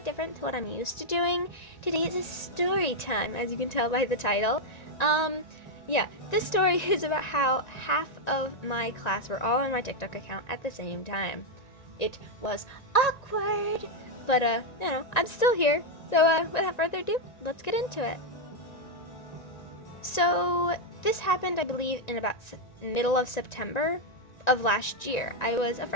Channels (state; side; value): late; right; 1.9 ms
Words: different to what I'm used to doing. Today is a story time, as you can tell by the title. This story is about how half of my class were all on my TikTok account at the same time. It was awkward, but I'm still here. So without further ado, let's get into it. So this happened, I believe, in about middle of September of last year. I was a